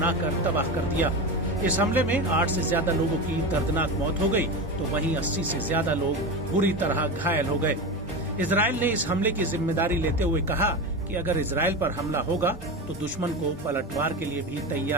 तबाह कर दिया। इस हमले में 8 से ज्यादा लोगों की दर्दनाक मौत हो गई, तो वहीं 80 से ज्यादा लोग बुरी तरह घायल हो गए। इजराइल ने इस हमले की जिम्मेदारी लेते हुए कहा कि अगर इजराइल पर हमला होगा तो दुश्मन को पलटवार के लिए भी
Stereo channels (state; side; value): normal; both; correlation 0.22